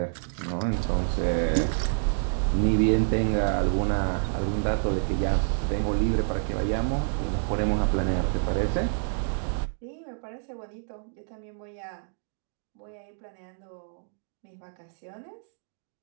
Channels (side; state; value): left; silent; digital silence